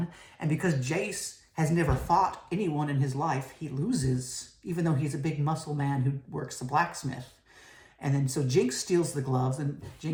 And because Jayce has never fought anyone in his life, he loses, even though he's a big muscle man who works the blacksmith. And then so Jinx steals the gloves, and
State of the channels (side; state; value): both; identical; correlation 1.00